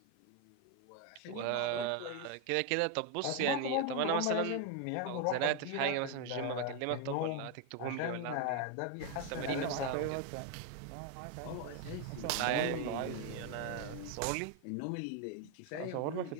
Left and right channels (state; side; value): different; both; correlation 0.01